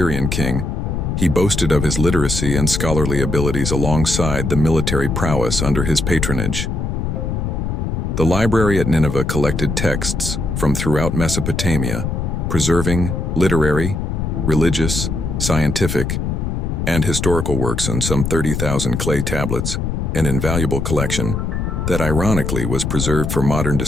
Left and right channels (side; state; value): left; noise; rumble, 2 dB below the sound